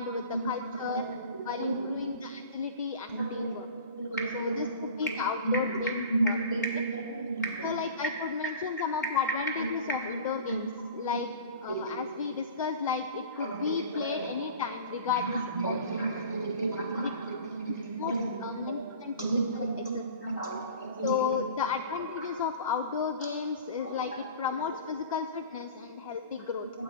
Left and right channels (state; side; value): inverted; both; correlation -0.40